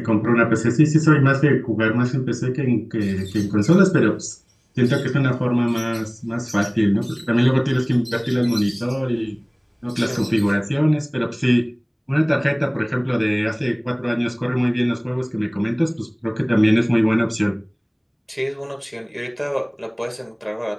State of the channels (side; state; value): both; identical; correlation 1.00